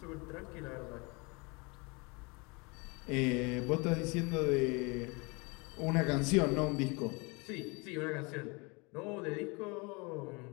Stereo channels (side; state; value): right; quieter; 28.6 dB